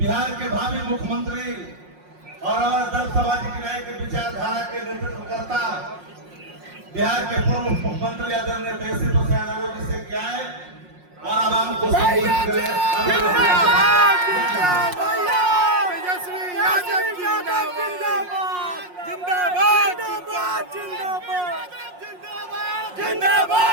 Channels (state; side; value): late; left; 5.6 ms